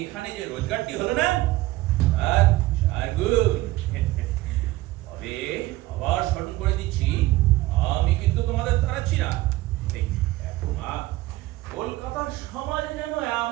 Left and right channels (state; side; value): quieter; left; 18.1 dB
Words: যে রোজগারটি হলো না, আর 4 গুণ। তবে আবার স্মরণ করে দিচ্ছি, আমি কিন্তু তোমাদের তাড়াচ্ছি না। এই দেখো মা, কলকাতার সমাজে যেন